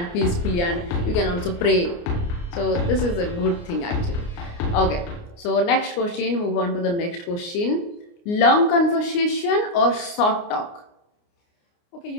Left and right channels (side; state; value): right; late; 29 ms